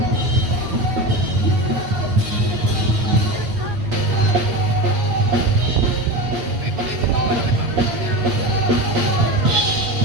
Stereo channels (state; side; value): late; left; 8.5 ms